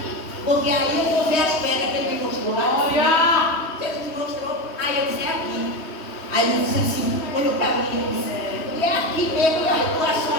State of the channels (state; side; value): late; right; 3.2 ms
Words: Porque aí eu vou ver as pedras que ele me mostrou lá. Olha! Jesus me mostrou, aí eu disse, é aqui. Aí ele disse assim, olhou para mim e disse, e é aqui mesmo, e aí tu achou